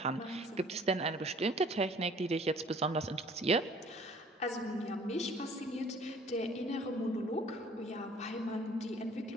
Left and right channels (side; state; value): both; normal; correlation 0.54